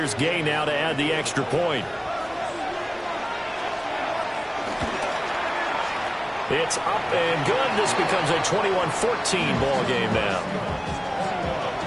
Gay now to add the extra point. It's up and good. This becomes a 21-14 ball game now.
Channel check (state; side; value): identical; both; correlation 1.00